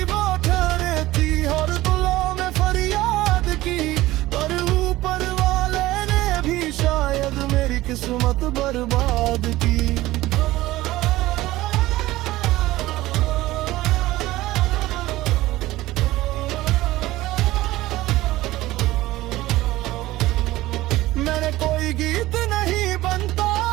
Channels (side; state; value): left; quieter; 17.2 dB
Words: ठहरे थी हर दुआ में फरियाद की। पर ऊपर वाले ने भी शायद मेरी किस्मत बर्बाद की। कोई गीत नहीं बनता